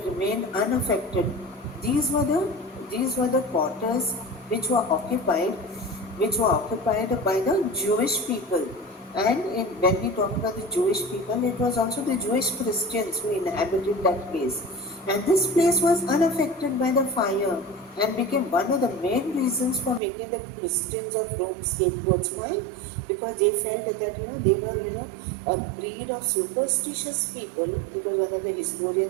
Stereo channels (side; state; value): left; drops out; at 20.0 s